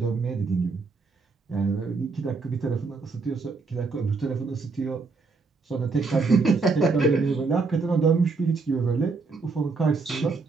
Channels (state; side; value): quieter; left; 4.3 dB